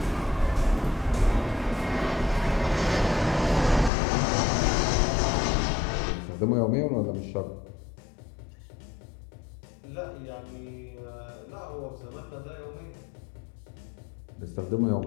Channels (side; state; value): right; drops out; at 3.9 s